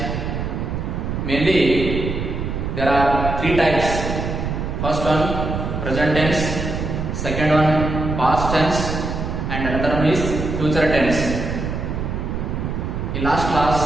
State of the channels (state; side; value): noise; right; rumble, 3 dB below the sound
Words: Mainly, there are three types. First one, present tense. Second one, past tense. And another one is future tense. In last